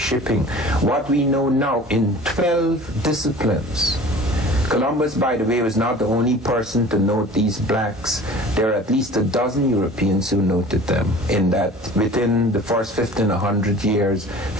What we know now in 12 disciplines, Columbus, by the way, was not the only person to note these blacks. There are at least a dozen Europeans who noted them in that within the first 50 and 100 years,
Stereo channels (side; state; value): both; normal; correlation 0.43